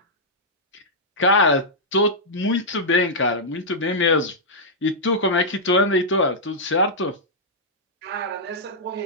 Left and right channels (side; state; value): both; normal; correlation -0.09